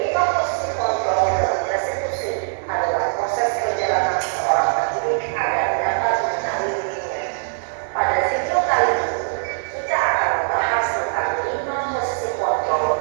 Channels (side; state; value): left; silent; digital silence